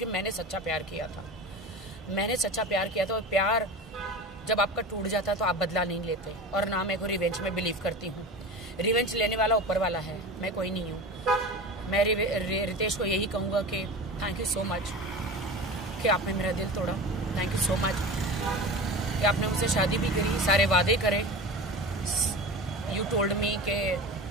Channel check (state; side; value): normal; both; correlation 0.31